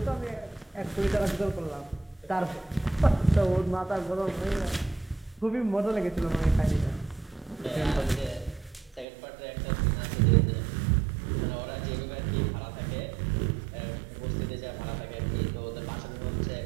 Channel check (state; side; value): drops out; left; at 9.1 s